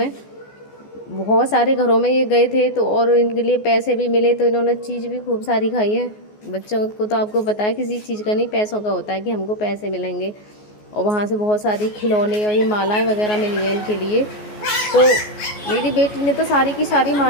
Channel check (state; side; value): late; right; 14 ms